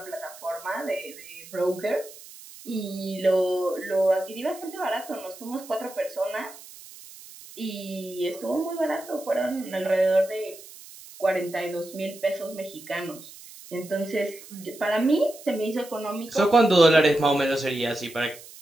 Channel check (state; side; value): noise; right; hiss, 18 dB below the sound